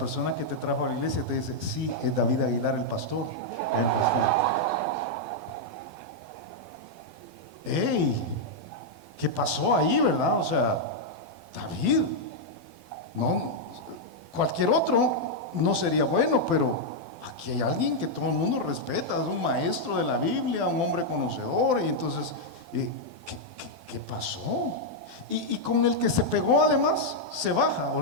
que te trajo a la iglesia te dice, sí, es David Aguilar, el pastor. ¡Ey! ¿Qué pasó ahí, verdad? O sea, David, no, cualquier otro no sería bueno, pero aquí hay alguien que todo el mundo respeta, es un maestro de la Biblia, un hombre conocedor, y entonces, ¿qué pasó? Y con el que se pegó además, se baja,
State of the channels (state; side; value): late; left; 12 ms